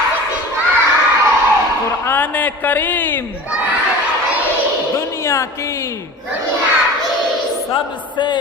कुरान करीम दुनिया की सबसे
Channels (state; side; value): normal; both; correlation 0.37